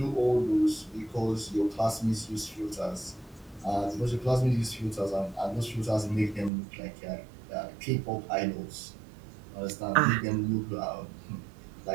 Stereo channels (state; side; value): drops out; left; at 6.5 s